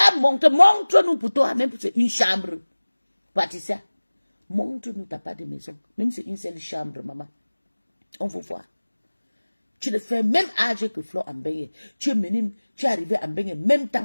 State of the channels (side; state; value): both; inverted; correlation -1.00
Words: montre-nous pour toi, même c'est une chambre. Patricia, montre-nous, t'as pas de maison. Même c'est une seule chambre, maman. On veut voir. Tu le fais même âge que Flo en Bengue. Tu es arrivé en Bengue même